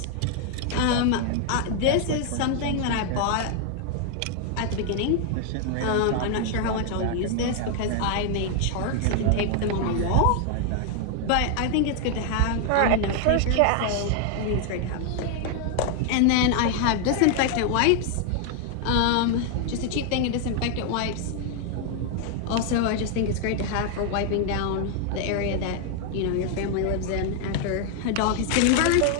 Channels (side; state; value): both; different; correlation 0.00